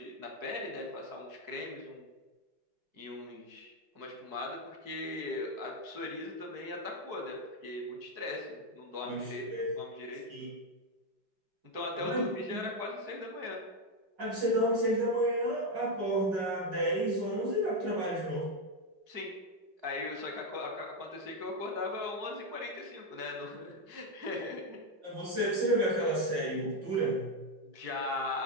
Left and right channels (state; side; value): late; left; 5.4 ms